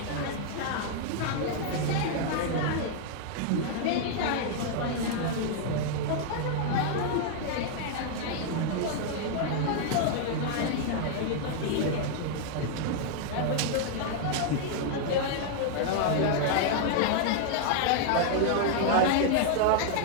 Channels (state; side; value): different; both; correlation -0.01